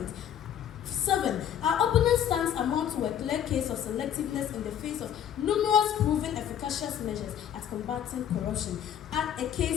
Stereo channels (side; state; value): right; quieter; 9.6 dB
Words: 7. Our opponent stands amount to a clear case of selectiveness in the face of numerous proven efficacious measures at combating corruption, and a